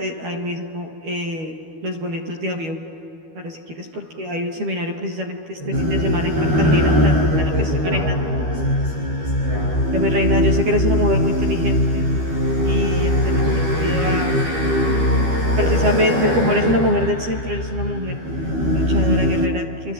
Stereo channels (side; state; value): left; late; 12 ms